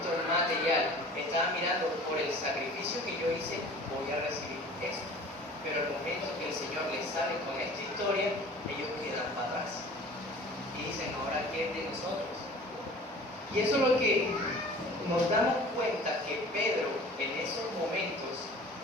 material, estaba mirando por el sacrificio que yo hice, voy a recibir esto. Pero al momento que el Señor les sale con esta historia, ellos quedan para atrás y dicen, ahora ¿qué es de nosotros? Y eso es lo que nos damos cuenta, que Pedro en esos momentos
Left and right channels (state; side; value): normal; both; correlation 0.44